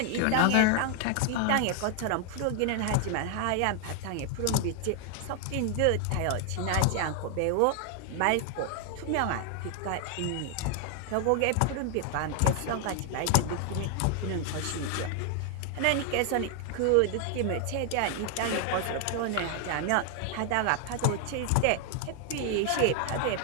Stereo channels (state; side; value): different; both; correlation 0.00